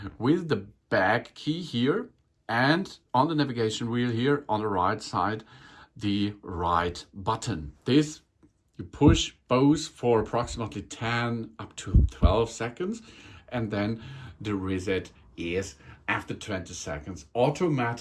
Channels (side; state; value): both; identical; correlation 1.00